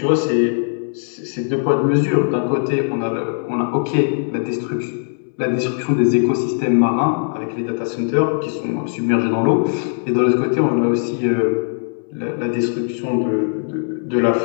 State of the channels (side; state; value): right; silent; 66 dB below the other